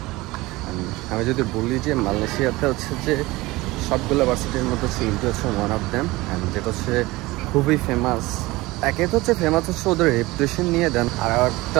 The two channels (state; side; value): quieter; left; 20.5 dB